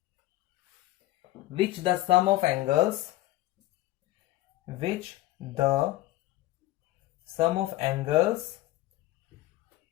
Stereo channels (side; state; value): right; quieter; 16.8 dB